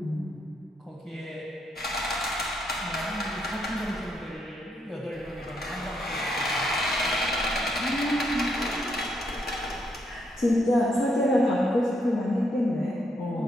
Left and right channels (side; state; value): both; normal; correlation 0.77